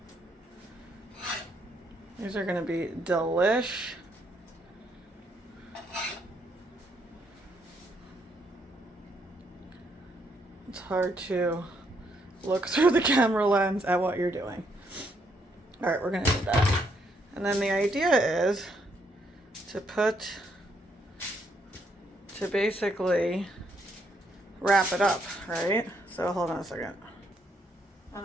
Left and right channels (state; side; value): normal; both; correlation 0.74